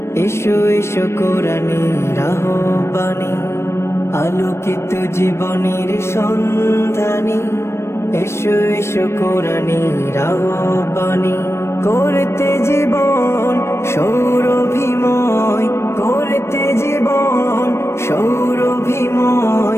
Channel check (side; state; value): right; late; 0.13 ms